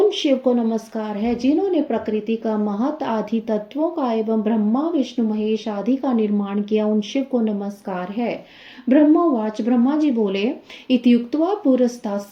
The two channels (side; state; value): both; identical; correlation 1.00